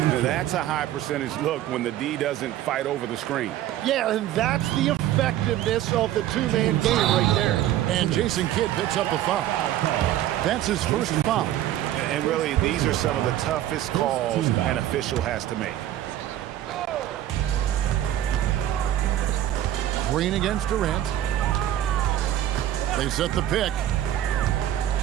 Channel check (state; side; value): quieter; left; 12.6 dB